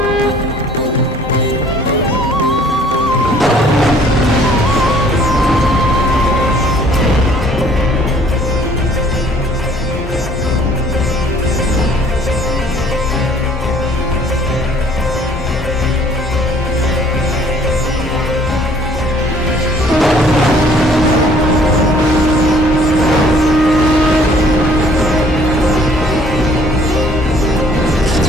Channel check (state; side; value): normal; both; correlation 0.57